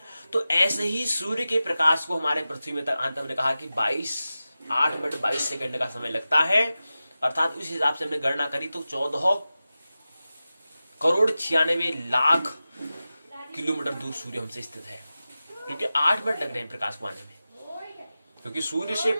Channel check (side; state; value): both; inverted; correlation -0.94